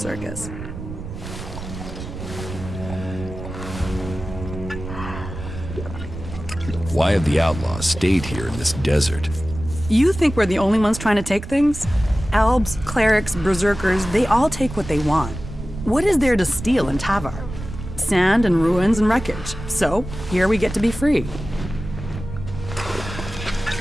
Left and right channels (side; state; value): right; noise; rumble, 10 dB below the sound